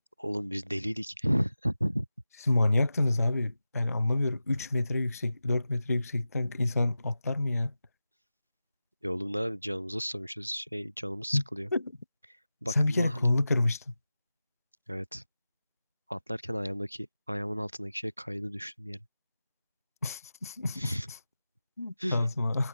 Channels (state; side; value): inverted; both; correlation -0.94